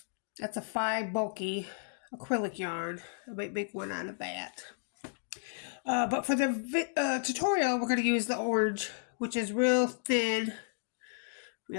that's a 5 bulky acrylic yarn. I might make one out of that. But for the tutorial, we're going to use the orange, which is real thin,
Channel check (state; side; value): silent; right; digital silence